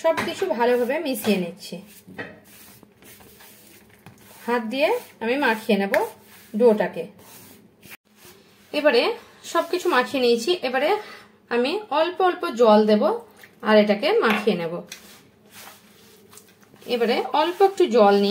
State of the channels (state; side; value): identical; both; correlation 1.00